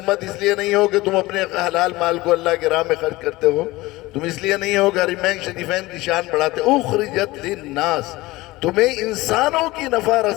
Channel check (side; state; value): right; quieter; 19.8 dB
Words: اس لیے نہیں ہو کہ تم اپنے حلال مال کو اللہ کے راہ میں خرچ کرتے ہو، تم اس لیے نہیں ہو کہ حرمین شریفین کی شان بڑھاتے ہو، اخرجت للناس، تمہیں انسانوں کی نفع